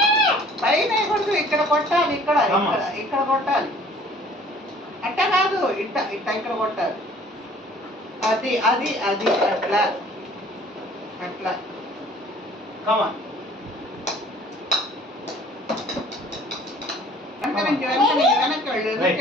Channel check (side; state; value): both; normal; correlation 0.52